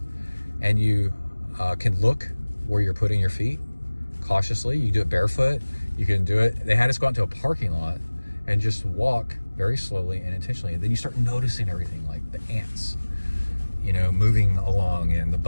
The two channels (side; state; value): both; inverted; correlation -1.00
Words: and you can look where you're putting your feet cautiously. You do it barefoot. You can do it. They had us go out to a parking lot and just walk very slowly and intentionally. And then you start noticing everything, like the ants, you know, moving along, and the